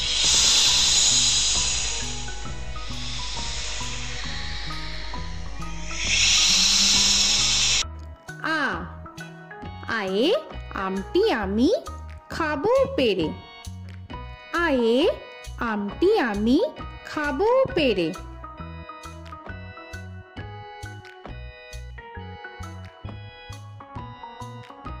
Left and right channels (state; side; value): identical; both; correlation 1.00